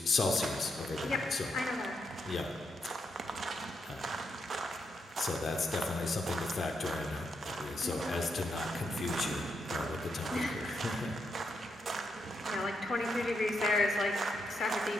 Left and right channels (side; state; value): both; normal; correlation 0.81